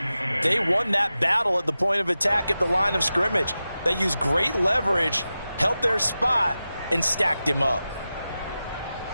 they won that battle at the point of attack at the line of scrimmage. They used great leverage, held their spot, and stacked him up.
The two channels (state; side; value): inverted; both; correlation -0.93